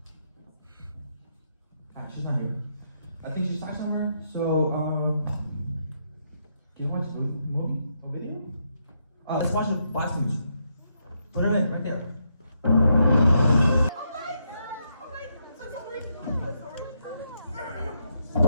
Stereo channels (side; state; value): both; inverted; correlation -0.79